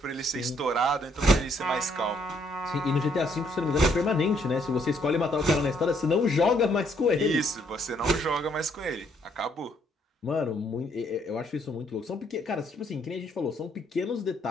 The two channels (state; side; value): normal; both; correlation 0.69